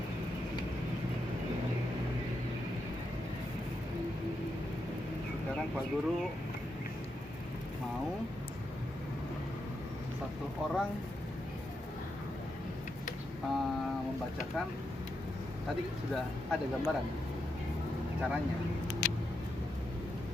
sekarang Pak Guru mau satu orang membacakan. Tadi sudah ada gambaran caranya,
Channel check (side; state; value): both; normal; correlation 0.84